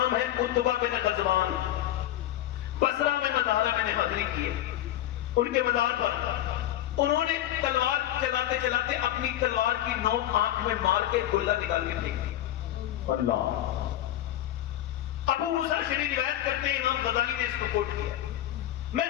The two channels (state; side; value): quieter; right; 13.1 dB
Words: ہے عتبہ بن غزوان، بصرہ میں مزارہ میں نے حاضری کی ہے، ان کے مزار پر انہوں نے تلوار چلاتے چلاتے اپنی تلوار کی نوک آنکھ میں مار کے گلہ نکال کے پھینک دی۔ اللہ، ابو موسیٰ شریف روایت کرتے ہیں، امام غزالی نے اس کو کوٹ کیا، میں